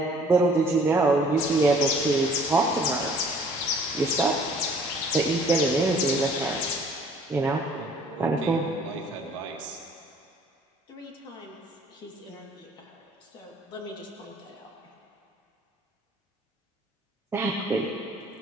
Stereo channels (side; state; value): both; normal; correlation 0.56